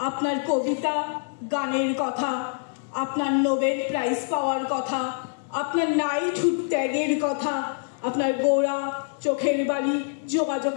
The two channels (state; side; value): silent; right; 61 dB below the other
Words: আপনার কবিতা, গানের কথা, আপনার নোবেল প্রাইজ পাওয়ার কথা, আপনার নাইটহুড ত্যাগের কথা, আপনার গোড়া, চোখের বালি,